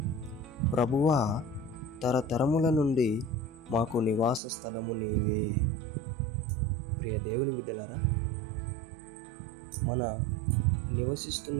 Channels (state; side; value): drops out; left; at 4.4 s